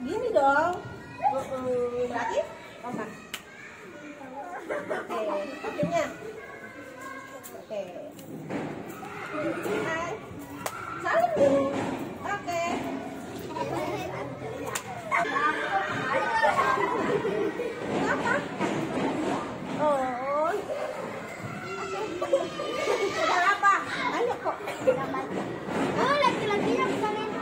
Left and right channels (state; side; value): identical; both; correlation 1.00